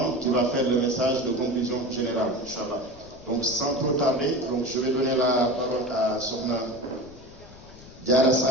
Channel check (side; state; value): left; noise; rumble, 20 dB below the sound